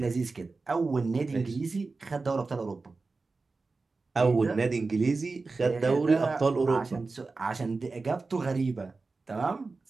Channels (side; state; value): left; quieter; 3.9 dB